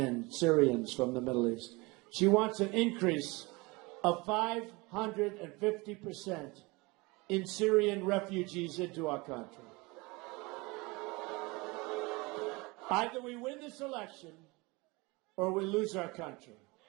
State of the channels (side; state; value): left; quieter; 25.0 dB